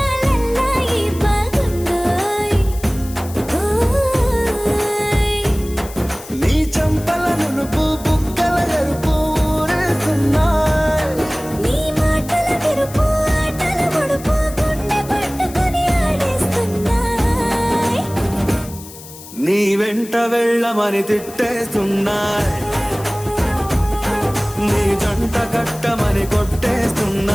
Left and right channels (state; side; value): noise; left; hiss, 16 dB below the sound